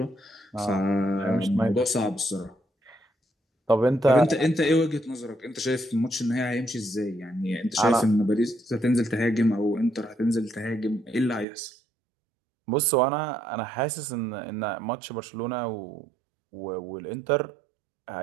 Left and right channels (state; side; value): drops out; left; at 11.5 s